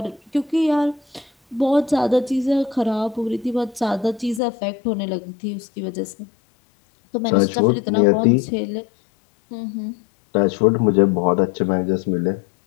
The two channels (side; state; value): right; drops out; at 4.4 s